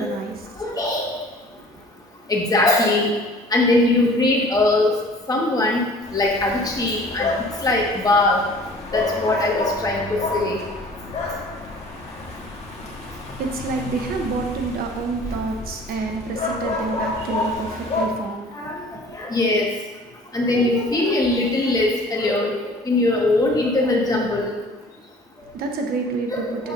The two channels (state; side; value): normal; both; correlation 0.48